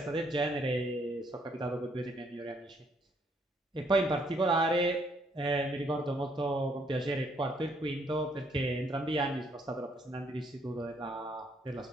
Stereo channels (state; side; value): normal; both; correlation 0.69